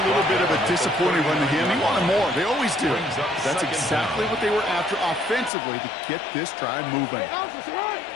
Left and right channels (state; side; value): drops out; right; at 5.5 s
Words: little bit of a disappointing run to him. He wanted more. They always do. That's exactly what they were after offensively to get this drive moving.